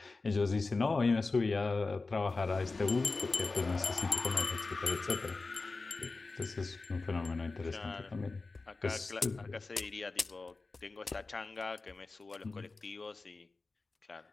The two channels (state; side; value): quieter; right; 3.7 dB